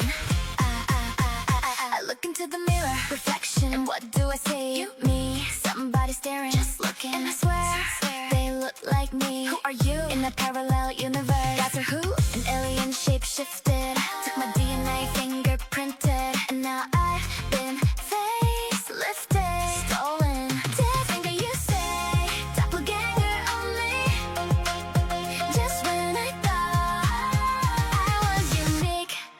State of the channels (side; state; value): both; identical; correlation 1.00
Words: I look into the mirror, reflection, and what do I see? You, me, somebody staring, just looking, and I swear they look like me. Who are you? In a parallel universe, that's her who? An alien shape-shifted, took my DNA, fingerprinted, and now I've been facelifted, stolen. Dead finger, you say, doppelganger only. Just when I thought I was unique,